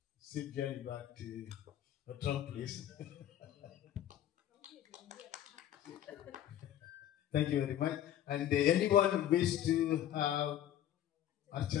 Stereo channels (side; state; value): right; quieter; 11.4 dB